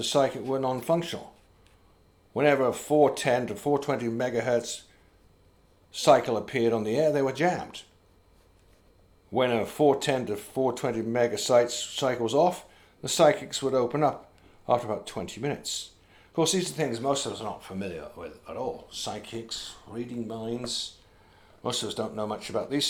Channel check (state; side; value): identical; both; correlation 1.00